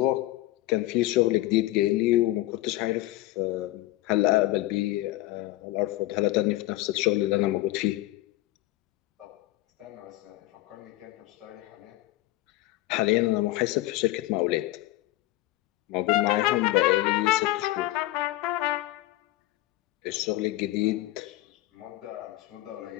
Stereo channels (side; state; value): right; quieter; 17.1 dB